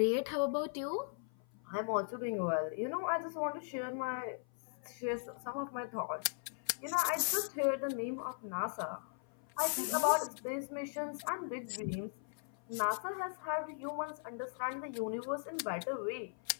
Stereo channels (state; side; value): silent; right; 52 dB below the other